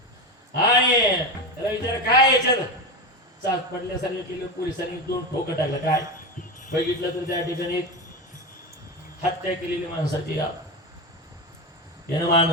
आणि त्याला विचार काय याच्यात चाच पडल्यासारखं केलं. पोलिसांनी 2 ठोकं टाकलं. काय बघितलं तर त्या ठिकाणी हत्या केलेली माणसाची यानं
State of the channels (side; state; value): both; normal; correlation 0.18